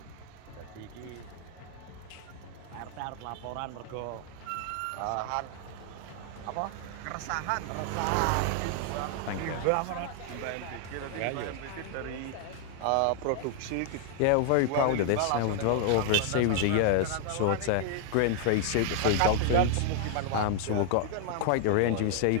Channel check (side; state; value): both; different; correlation 0.00